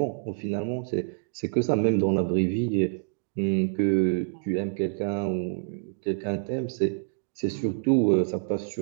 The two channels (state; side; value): silent; left; digital silence